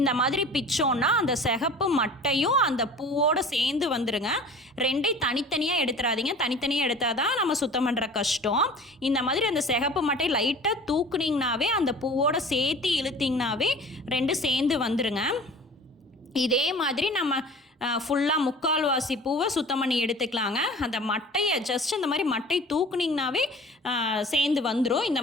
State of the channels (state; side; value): normal; both; correlation 0.43